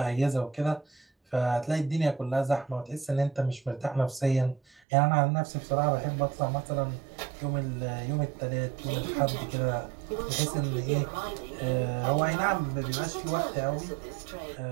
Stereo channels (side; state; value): left; drops out; at 4.8 s